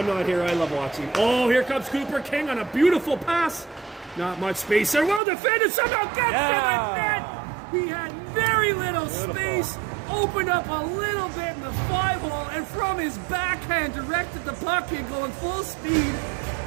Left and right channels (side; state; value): left; drops out; at 5.2 s